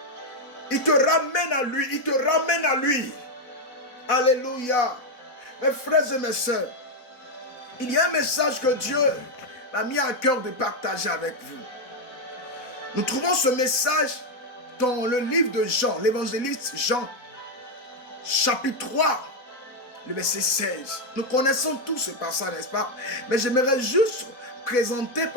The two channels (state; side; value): late; right; 4.0 ms